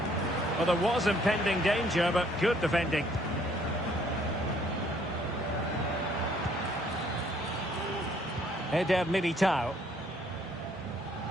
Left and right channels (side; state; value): both; normal; correlation 0.63